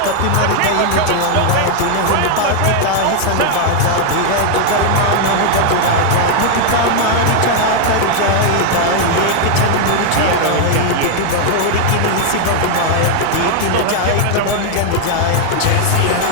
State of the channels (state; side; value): different; both; correlation 0.00